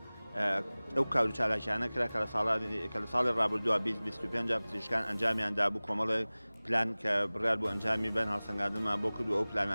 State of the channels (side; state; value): both; inverted; correlation -0.99